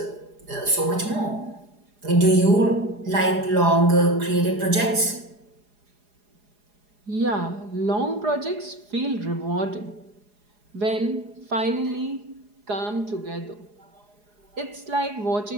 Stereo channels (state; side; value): late; left; 4.8 ms